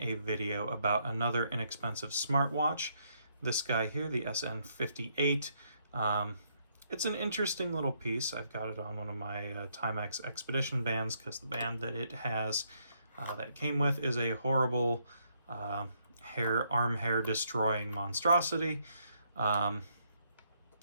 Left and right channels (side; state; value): both; inverted; correlation -0.73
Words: a video about another inexpensive smartwatch. This guy here, the SN58. It's an interesting little piece. I've got it on one of my Timex Expedition bands because the band that it has, that it came with, is a horrible arm hair destroying monstrosity. But